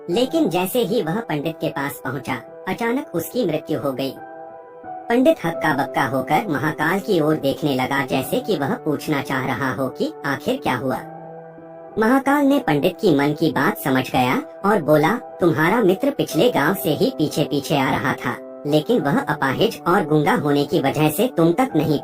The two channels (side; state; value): both; identical; correlation 1.00